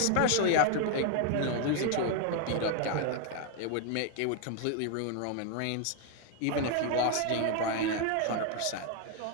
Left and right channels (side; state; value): both; different; correlation 0.01